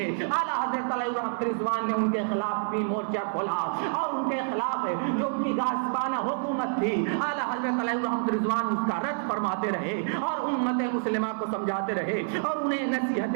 اعلیٰ حضرت علیہ رحمت رضوان نے ان کے خلاف بھی مورچہ کھولا، اور ان کے خلاف جو ان کی غاصبانہ حکومت تھی اعلیٰ حضرت علیہ رحمت رضوان اس کا رد فرماتے رہے، اور امت مسلمہ کو سمجھاتے رہے، اور انہیں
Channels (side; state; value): left; silent; 55 dB below the other